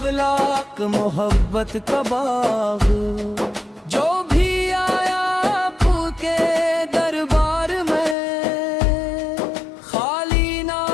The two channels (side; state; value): right; drops out; at 8.2 s